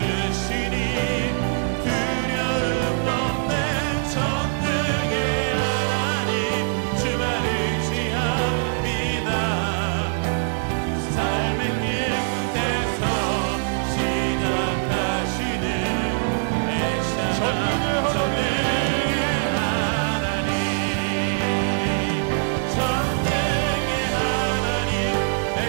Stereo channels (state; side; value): silent; left; 62 dB below the other